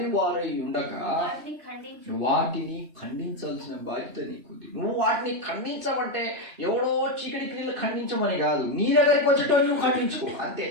ఉండక వాటిని ఖండించాల్సిన బాధ్యత నీకుంది. నువ్వు వాటిని ఖండించమంటే ఎవడో చీకటి క్రియలు ఖండించమని కాదు, నీ దగ్గరికి వచ్చేటోళ్ళు నువ్వు ఖండించుకో అంతే.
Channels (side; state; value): left; late; 3.1 ms